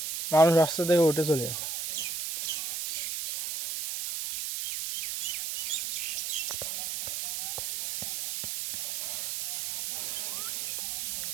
মানুষ রাস্তা থেকে উঠে চলে গেছে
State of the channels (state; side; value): noise; right; hiss, 2 dB below the sound